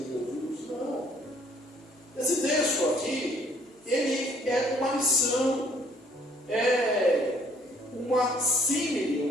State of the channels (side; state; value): both; normal; correlation 0.61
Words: Jesus, não. Esse texto aqui, ele é uma lição, é uma símile,